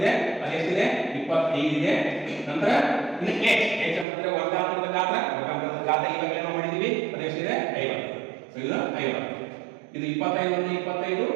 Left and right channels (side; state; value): left; drops out; at 4.0 s